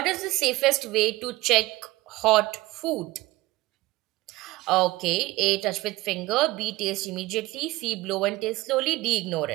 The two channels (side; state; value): left; quieter; 19.2 dB